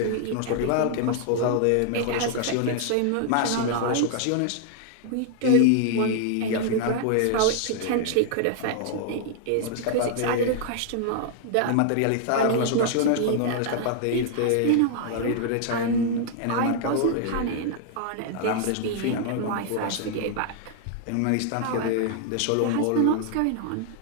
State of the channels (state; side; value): different; both; correlation 0.00